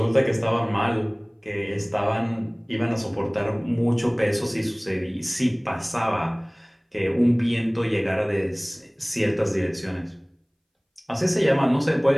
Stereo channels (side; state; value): both; identical; correlation 1.00